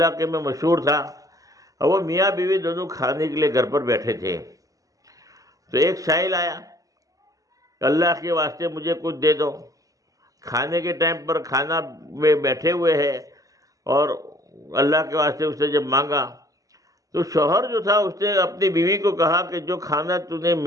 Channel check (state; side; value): late; left; 0.17 ms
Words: میں مشہور تھا، اور وہ میاں بیوی دونوں کھانے کے لیے گھر پر بیٹھے تھے۔ تو ایک سائل آیا، اللہ کے واسطے مجھے کچھ دے دو۔ کھانے کے ٹائم پر کھانا میں بیٹھے ہوئے ہیں، اور اللہ کے واسطے اس نے جب مانگا تو شوہر جو تھا اس نے اپنی بیوی کو کہا کہ جو کھانا تو نے